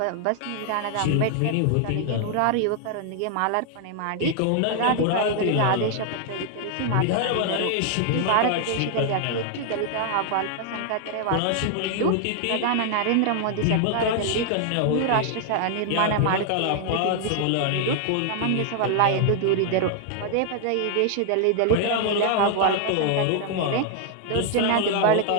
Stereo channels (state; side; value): different; both; correlation 0.00